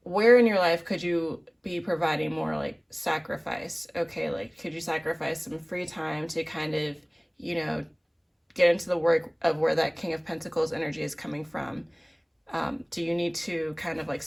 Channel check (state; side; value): identical; both; correlation 1.00